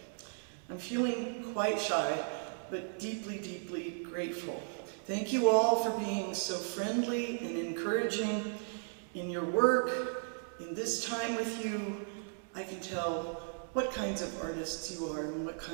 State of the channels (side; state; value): left; silent; digital silence